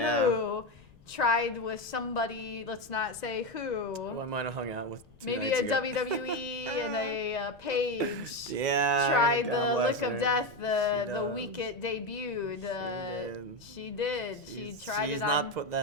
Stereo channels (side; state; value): left; noise; rumble, 26 dB below the sound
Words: who, tried with somebody, let's not say who. Who I might have hung out with 2 Maybe nights a ago. WWE and a Paige. Yeah. Tried God the bless Lick of her. Death She the does. week it debuted. She did. She She's tried it not on. put